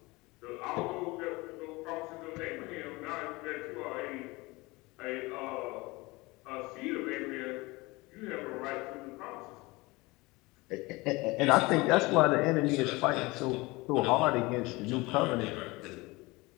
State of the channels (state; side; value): quieter; right; 23.1 dB